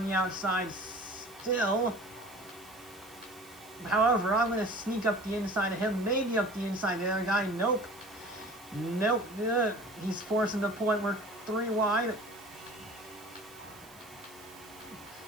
the outside still. However, I'm going to sneak up the inside of him. Maybe up the inside of the other guy. Nope. Nope. He's forcing the point. We're 3 wide.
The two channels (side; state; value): right; noise; hiss, 22 dB below the sound